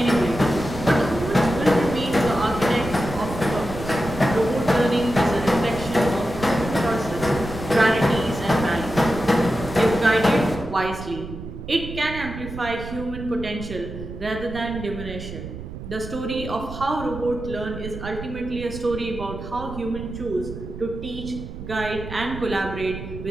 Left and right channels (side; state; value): right; noise; rumble, 10 dB below the sound